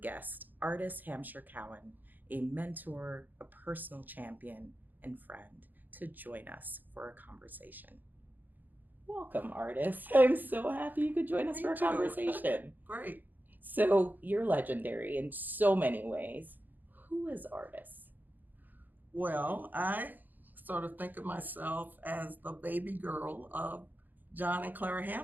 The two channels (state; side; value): late; left; 0.086 ms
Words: Artis Hampshire-Cowan, a mentor, a personal champion, and friend, to join us for a conversation. Welcome, Artis. I'm so happy you could join us for a conversation. Great. So you're legendary in so many ways. Who is Artis? Well, I sort of think of myself as the baby girl of John and Clara